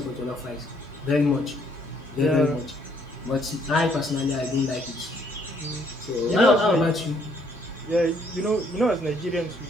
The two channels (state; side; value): normal; both; correlation 0.67